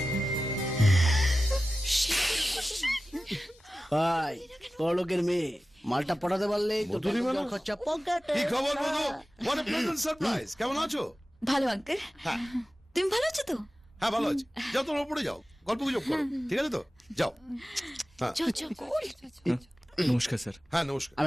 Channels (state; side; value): normal; both; correlation 0.95